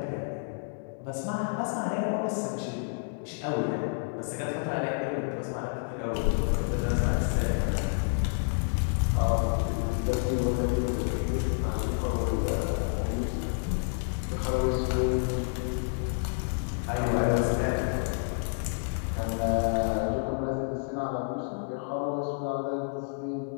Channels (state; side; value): silent; right; digital silence